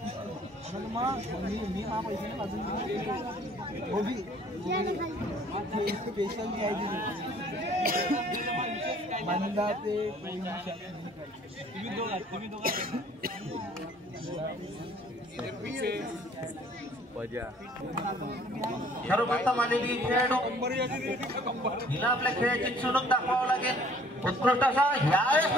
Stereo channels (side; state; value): both; normal; correlation 0.56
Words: सर्वप्रथम आलेली खेळाडू हिला आपल्या खेळाची चुणूक दाखवावं लागेल उत्कृष्ट असा यावेळेस